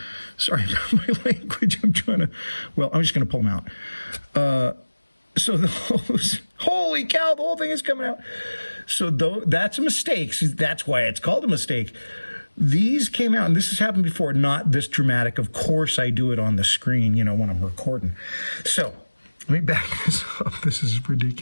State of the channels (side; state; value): both; inverted; correlation -1.00